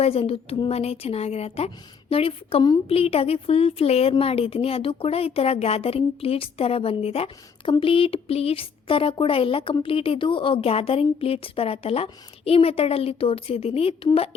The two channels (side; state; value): right; quieter; 6.2 dB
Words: ವೈಸ್ ಅಂತೂ ತುಂಬಾ ಚೆನ್ನಾಗಿರುತ್ತೆ. ನೋಡಿ, ಕಂಪ್ಲೀಟಾಗಿ ಫುಲ್ ಫ್ಲೇರ್ ಮಾಡಿದ್ದೀನಿ. ಅದು ಕೂಡ ಈ ಥರ ಗ್ಯಾದರಿಂಗ್ ಪ್ಲೀಟ್ಸ್ ಥರ ಬಂದಿದೆ. ಕಂಪ್ಲೀಟ್ ಪ್ಲೀಟ್ಸ್ ಥರ ಕೂಡ ಇಲ್ಲ, ಕಂಪ್ಲೀಟ್ ಇದು ಗ್ಯಾದರಿಂಗ್ ಪ್ಲೀಟ್ಸ್ ಬರುತ್ತಲ್ಲ, ಈ ಮೆಥಡಲ್ಲಿ ತೋರಿಸಿದ್ದೀನಿ. ತುಂಬ